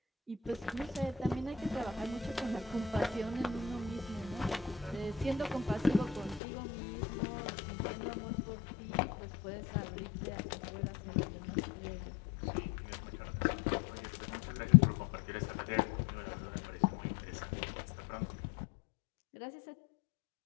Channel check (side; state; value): right; drops out; at 6.4 s